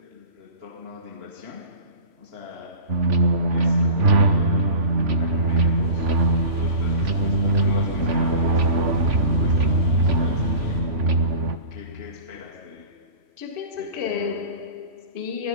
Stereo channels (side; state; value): left; late; 3.1 ms